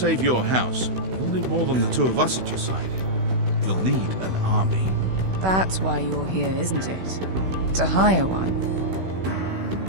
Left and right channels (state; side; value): late; left; 16 ms